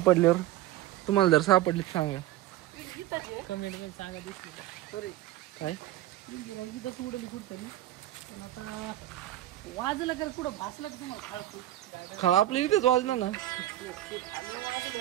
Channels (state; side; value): quieter; left; 14.3 dB